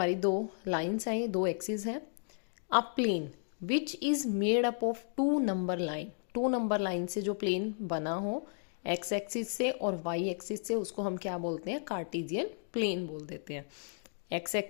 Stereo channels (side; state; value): right; silent; digital silence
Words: दो लाइंस हैं, दो एक्सिस हैं. A plane which is made up of two number line. Two number line से जो प्लेन बना हो एक्स एक्सिस से और वाई एक्सिस से, उसको हम क्या बोलते हैं, कार्टेशियन प्लेन बोल देते हैं. एक्स